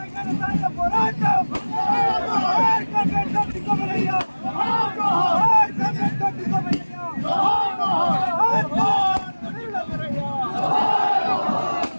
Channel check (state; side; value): inverted; both; correlation -1.00